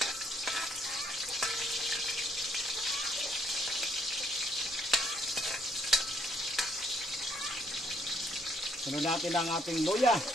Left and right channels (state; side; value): normal; both; correlation 0.68